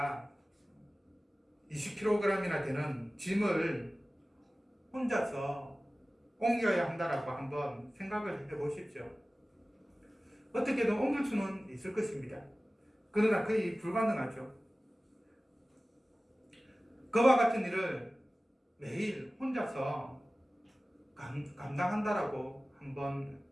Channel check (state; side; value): normal; both; correlation 0.97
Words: 20kg이나 되는 짐을 혼자서 옮겨야 한다라고 한번 생각을 해보십시오. 어떻게든 옮길 수는 있을 것입니다. 그러나 거의 불가능하죠. 그와 같은 일을 매일 혼자서 감당한다라고 한번